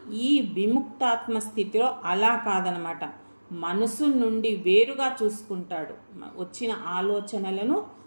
ఈ విముక్తాత్మ స్థితిలో అలా కాదనమాట. మనసు నుండి వేరుగా చూసుకుంటాడు. వచ్చిన ఆలోచనలను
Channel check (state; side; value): inverted; both; correlation -1.00